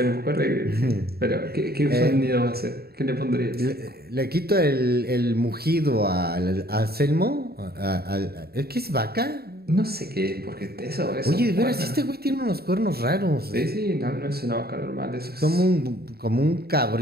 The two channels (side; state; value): left; late; 0.45 ms